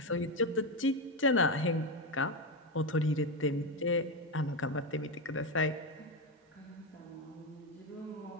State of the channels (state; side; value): normal; both; correlation 0.11